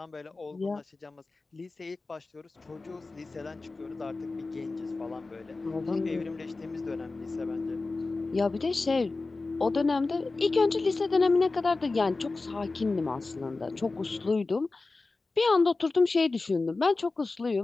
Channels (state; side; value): quieter; right; 3.6 dB